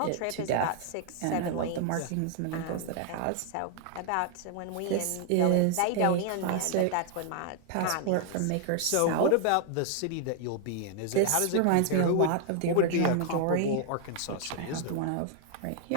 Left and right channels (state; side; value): different; both; correlation 0.00